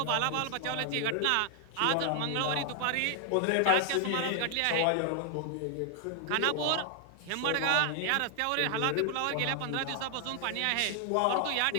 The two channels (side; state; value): both; different; correlation 0.00